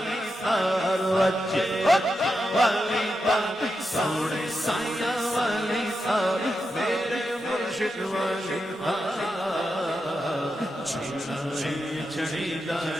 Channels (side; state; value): both; normal; correlation 0.87